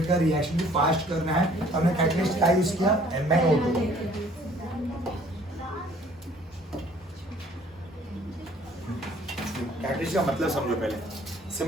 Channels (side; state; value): both; normal; correlation 0.56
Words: का रिएक्शन भी फास्ट करना है तो हमने कैटलिस्ट का यूज किया, MnO2। कैटलिस्ट का मतलब समझो पहले,